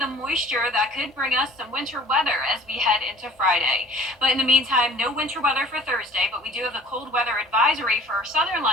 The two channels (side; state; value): both; normal; correlation 0.49